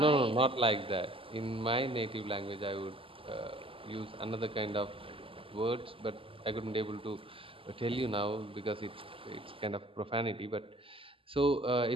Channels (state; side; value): late; left; 0.26 ms